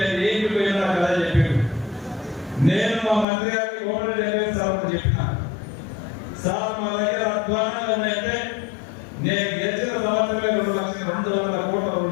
ఏంటి పోయినా కదా చెప్పాను. నేను మా మంత్రి గారికి ఓటర్ డెలివరీ సార్ చెప్పిన, సార్ మా దగ్గర అధ్వానంగా ఉన్నాయంటే నేను గెలిచిన సంవత్సరమే 2,200,000 కోట్ల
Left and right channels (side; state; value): right; drops out; at 3.2 s